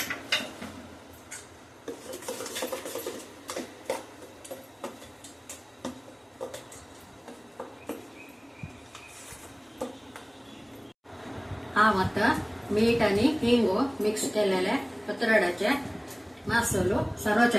हांव आता मीठ आणि हिंगू मिक्स केलेले पत्राडाचे मासोलो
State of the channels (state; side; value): identical; both; correlation 1.00